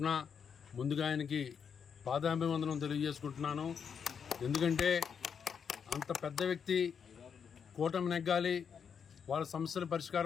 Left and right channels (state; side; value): quieter; right; 6.9 dB